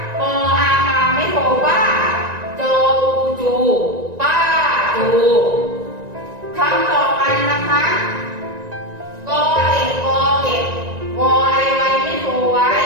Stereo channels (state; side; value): late; left; 1.9 ms